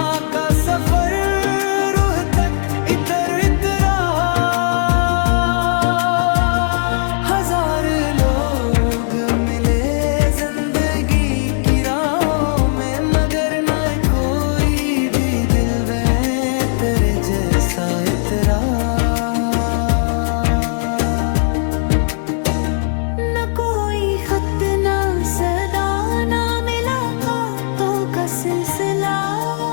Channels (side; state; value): right; silent; 68 dB below the other